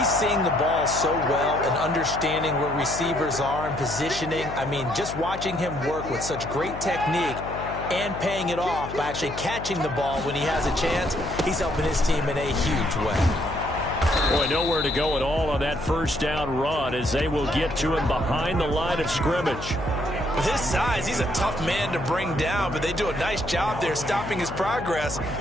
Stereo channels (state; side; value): noise; left; hum, 10 dB below the sound